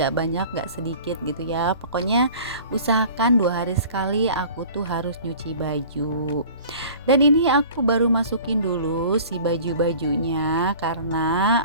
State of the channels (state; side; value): inverted; both; correlation -0.45